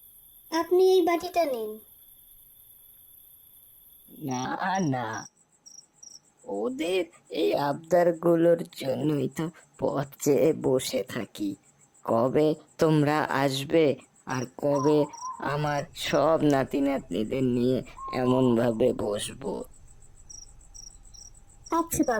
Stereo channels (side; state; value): both; identical; correlation 1.00